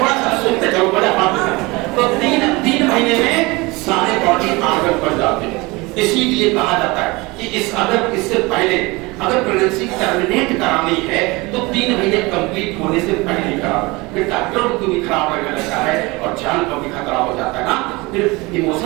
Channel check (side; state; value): left; quieter; 23.9 dB